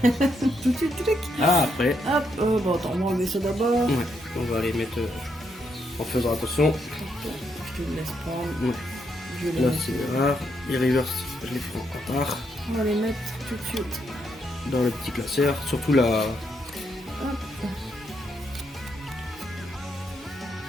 Tout de suite, clic. Ah, après, Hop, bon, attends, on va enlever ça d'abord. ouais, on va les mettre en faisant attention. Je te laisse prendre. Ouais. Je vais les Là, mettre. c'est les rares. Les reverse, je les ferai en retard. On va les mettre tout de suite. Dans le petit classeur. Surtout la. Hop.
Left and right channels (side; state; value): both; normal; correlation 0.78